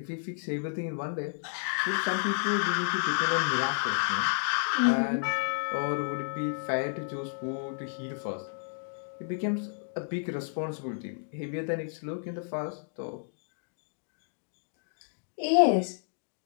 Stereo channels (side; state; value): right; silent; digital silence